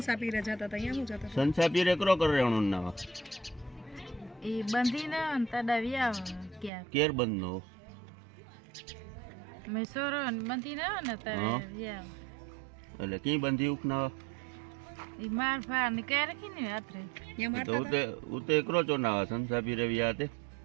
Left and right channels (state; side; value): drops out; left; at 6.7 s